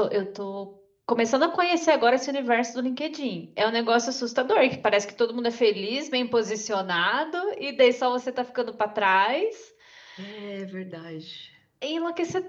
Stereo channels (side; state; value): both; identical; correlation 1.00